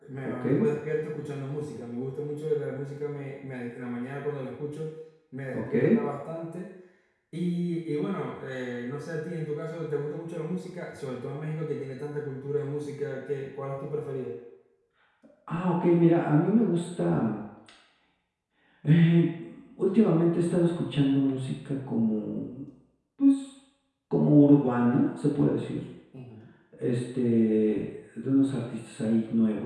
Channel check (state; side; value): identical; both; correlation 1.00